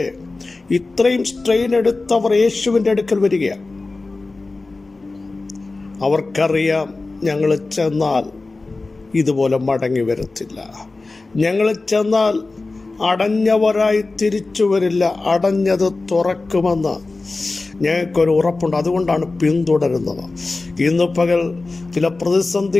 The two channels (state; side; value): quieter; right; 3.5 dB